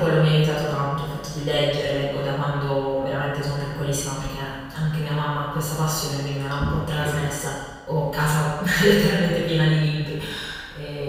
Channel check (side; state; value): both; identical; correlation 1.00